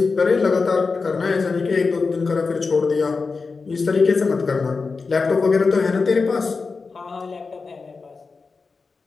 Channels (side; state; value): right; quieter; 4.5 dB